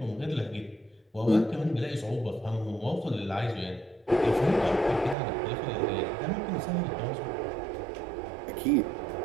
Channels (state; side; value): drops out; left; at 5.2 s